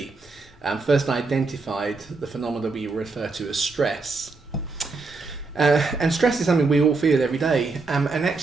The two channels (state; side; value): quieter; left; 3.9 dB